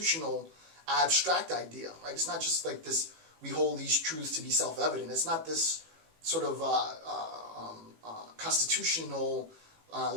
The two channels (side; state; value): left; late; 18 ms